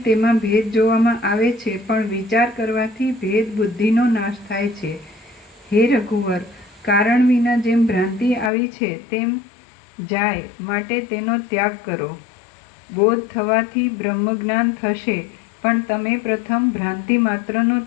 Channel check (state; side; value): drops out; right; at 8.5 s